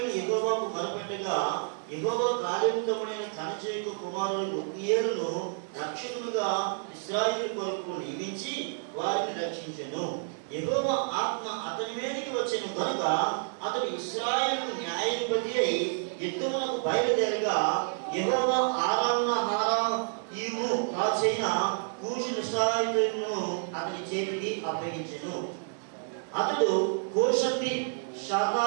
యెహోవాకు మొరపెట్టగా యెహోవా కాలేబు తమ్ముడైన కనజేకు కుమారుడు ఒత్నీయేలును రక్షకులుగా ఇశ్రాయేలు కొరకు నియమించి వారిని రక్షించెను. యెహోవా ఆత్మ అతని మీదకి వచ్చెను కనుక అతడు ఇశ్రాయేలుకు న్యాయాధిపతి అయి యుద్ధమునకు బయలుదేరగా యెహోవా ఆరామును రాజైన కూషు నిశ్రాయులను అతని చేతికి అప్పగించెను. అతడు కోషంబి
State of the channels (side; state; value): left; silent; digital silence